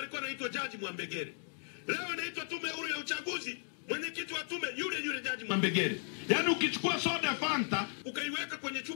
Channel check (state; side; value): silent; right; digital silence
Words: anaitwa Jaji Mwambegere. Leo inaitwa tume huru ya uchaguzi, mwenyekiti wa tume yule Jaji Mwambegere. Yaani ukichukua soda Fanta ukaiweka kwenye